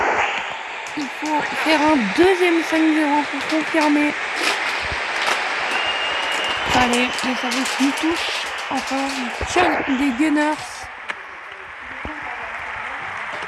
Il faut faire un deuxième 5-0 pour confirmer. Allez, le service qui touche encore. Sean des Gunners.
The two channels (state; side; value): identical; both; correlation 1.00